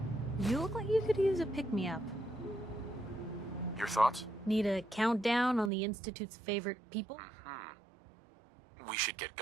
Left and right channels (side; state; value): left; drops out; at 5.7 s